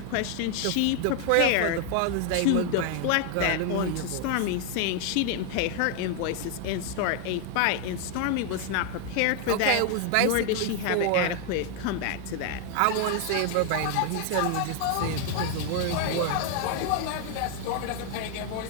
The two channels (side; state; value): both; different; correlation 0.00